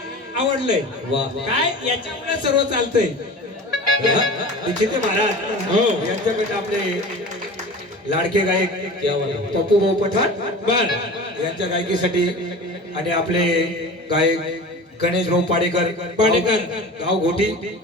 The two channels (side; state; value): both; normal; correlation 0.35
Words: आवडलंय काय, याच्यामुळे सर्व चालतंय. निश्चित महाराज यांच्याकडे आपले लाडके गायक पप्पू भाऊ पठाण बर यांच्या गायकीसाठी आणि आपले गायक गणेश भाऊ पाडेकर गाव घोटी